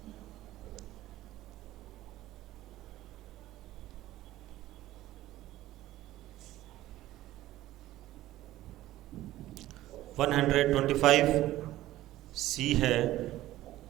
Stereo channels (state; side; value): quieter; left; 15.3 dB